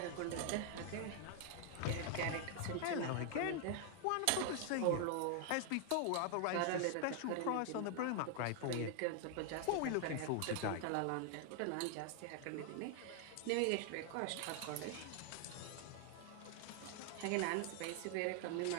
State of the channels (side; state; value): both; different; correlation 0.00